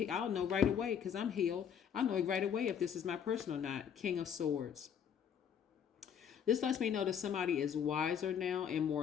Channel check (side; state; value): right; quieter; 8.1 dB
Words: know right away because I'm healed. I'll know right away if this is my person or not. King of Swords. This lets me know that somebody is wiser now and